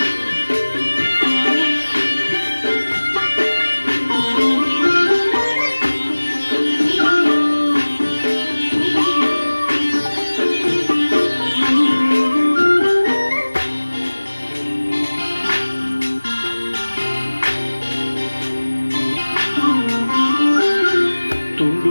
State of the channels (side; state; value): both; inverted; correlation -1.00